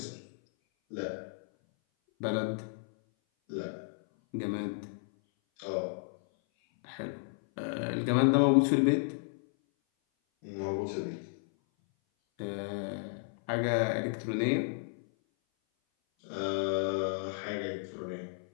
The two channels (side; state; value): right; silent; 56 dB below the other